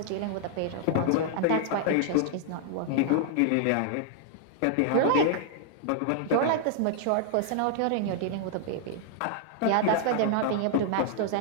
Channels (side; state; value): both; different; correlation 0.00